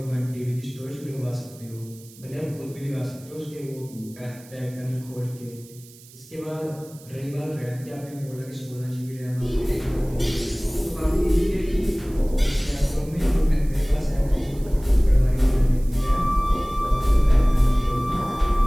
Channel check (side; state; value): right; noise; hiss, 22 dB below the sound